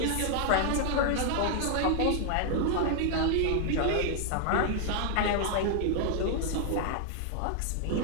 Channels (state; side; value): different; both; correlation 0.00